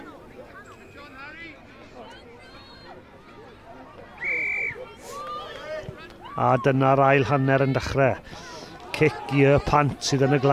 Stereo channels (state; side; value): identical; both; correlation 1.00